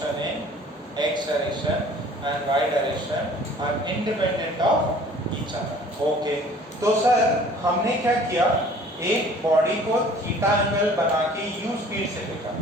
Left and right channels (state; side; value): normal; both; correlation 0.51